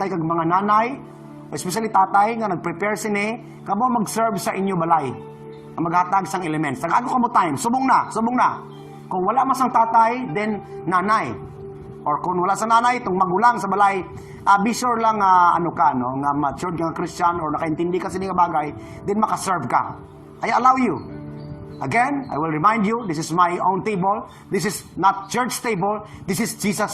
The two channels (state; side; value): identical; both; correlation 1.00